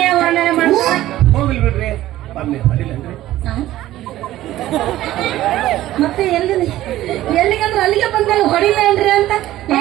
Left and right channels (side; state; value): left; quieter; 14.7 dB